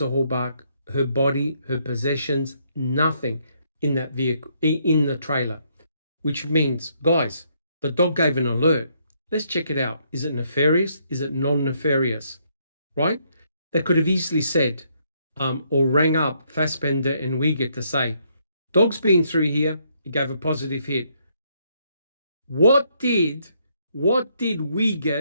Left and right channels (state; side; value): inverted; both; correlation -0.72